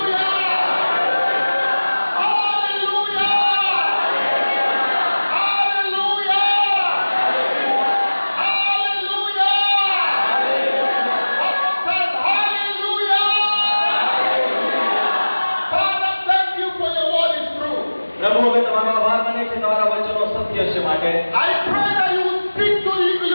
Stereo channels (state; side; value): inverted; both; correlation -1.00